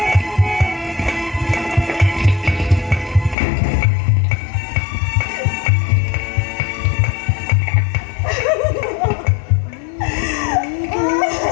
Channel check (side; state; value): right; drops out; at 3.4 s